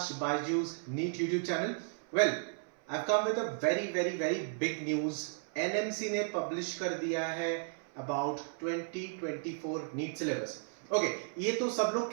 Baiju's NEET YouTube channel. Well, I've come with a very big news. NMC ने publish कर दिया है about 2024 NEET syllabus. Okay, ये तो सब लोग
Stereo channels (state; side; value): silent; left; 55 dB below the other